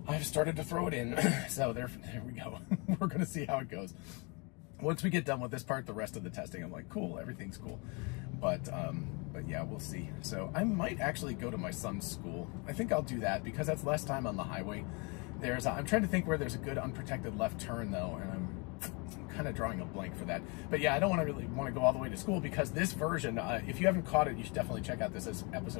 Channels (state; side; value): quieter; right; 31.3 dB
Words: I've started to throw it in. So there we go. We're going to see how it goes. Once we get done with this part, the rest of the testing, I'm like, cool, everything's cool. But yeah, we'll see. So I might actually go to my son's school. I think I'll do that, because that's less time on the highway. I'm trying to think where there's a good unprotected left turn though, and I'm kind of drawing a blank for that. But yeah, I don't really want to go all the way to school, because this version, if you haven't caught it, you should definitely check out this